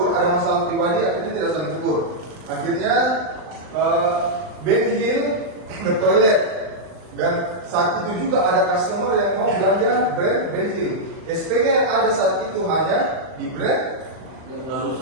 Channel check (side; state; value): left; late; 39 ms